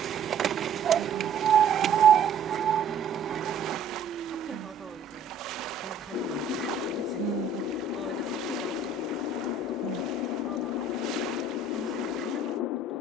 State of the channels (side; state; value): left; quieter; 4.2 dB